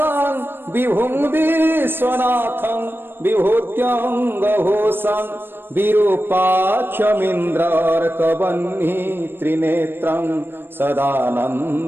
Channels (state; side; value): late; left; 0.10 ms